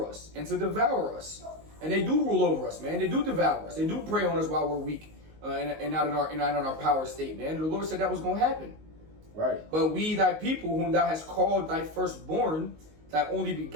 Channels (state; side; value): late; left; 19 ms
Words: us and to devour us. And they do rule over us, man. They do devour us. They do prey on us while we're weak and not in our power state, man. And the Lord said that was going to happen. Right. But we, thy people, whom thou hast called thy firstborn, thy only